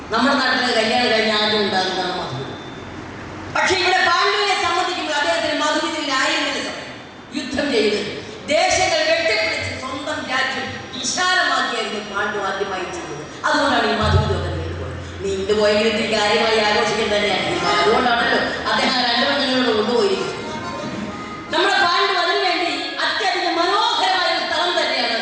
നമ്മുടെ നാട്ടിലെ കല്യാണം കഴിഞ്ഞ ആദ്യം ഉണ്ടാകുന്നതാണ് മധുവിധം. പക്ഷെ ഇവിടെ പാണ്ഡുവിനെ സംബന്ധിക്കുമ്പോൾ അദ്ദേഹത്തിന് മധുവിധത്തിനായിരുന്നില്ല സമയം. യുദ്ധം ചെയ്ത് ദേശങ്ങൾ വെട്ടിപ്പിടിച്ച് സ്വന്തം രാജ്യം വിശാലമാക്കിയായിരുന്നു പാണ്ഡു ആദ്യമായി ചെയ്തത്. അതുകൊണ്ടാണ് ഈ മധുവിധമൊക്കെ നീണ്ടുപോയത്. നീണ്ടുപോയെങ്കിൽ കാര്യമായി ആഘോഷിക്കാൻ തന്നെയാണ്. അതുകൊണ്ടാണല്ലോ അദ്ദേഹം രണ്ടു പെണ്ണുങ്ങളോട് കൊണ്ടുപോയിരിക്കുന്നത്. നമ്മുടെ പാണ്ഡു അതിനു വേണ്ടി അത്യധികം മനോഹരമായ ഒരു സ്ഥലം തന്നെയാണ്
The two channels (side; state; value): both; identical; correlation 1.00